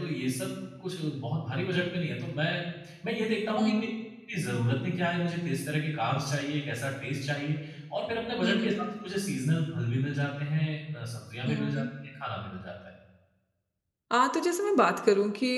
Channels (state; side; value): identical; both; correlation 1.00